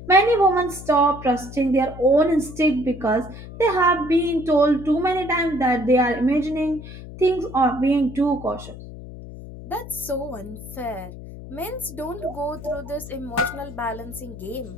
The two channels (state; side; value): noise; left; hum, 13 dB below the sound